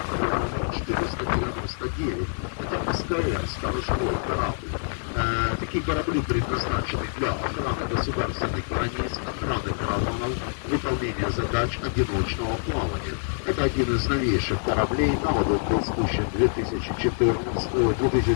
номер 499. Это СКР, сторожевой корабль. Такие корабли предназначены для охраны государственных границ, охраны караванов, выполнения задач одиночного плавания. Это один из новейших кораблей. На воду был спущен в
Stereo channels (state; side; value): silent; right; digital silence